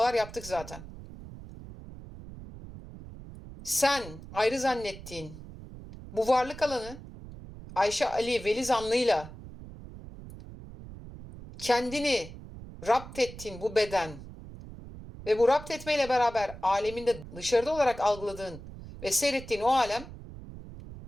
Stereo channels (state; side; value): noise; right; rumble, 14 dB below the sound